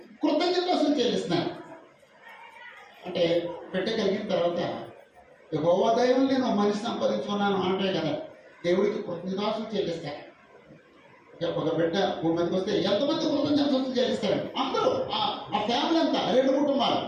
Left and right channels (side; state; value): both; identical; correlation 1.00